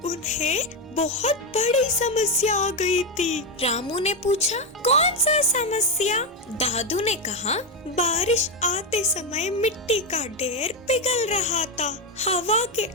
उन्हें बहुत बड़ी समस्या आ गई थी। रामू ने पूछा, कौन सा समस्या? दादू ने कहा, बारिश आते समय मिट्टी का ढेर पिघल रहा था, हवा के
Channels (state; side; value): normal; both; correlation 0.09